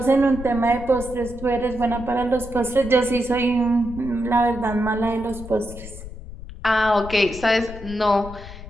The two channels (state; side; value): noise; left; rumble, 13 dB below the sound